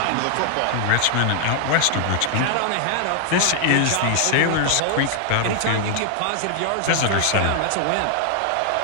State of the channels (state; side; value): different; both; correlation 0.00